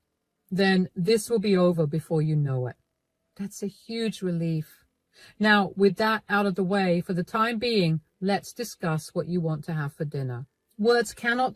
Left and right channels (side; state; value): both; identical; correlation 1.00